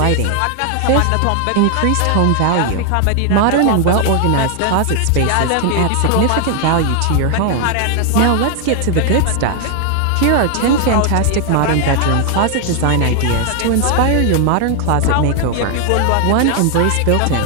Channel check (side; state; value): both; different; correlation 0.00